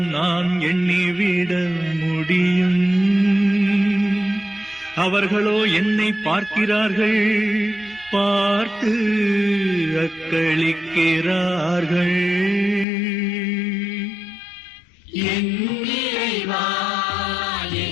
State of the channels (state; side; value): drops out; right; at 12.9 s